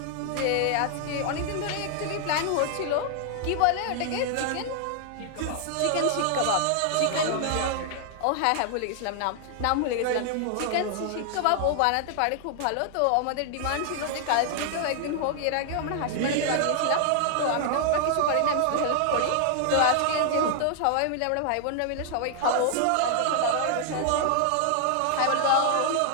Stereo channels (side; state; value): both; different; correlation 0.00